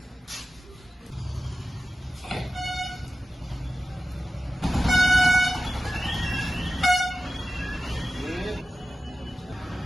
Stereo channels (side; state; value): both; normal; correlation 0.94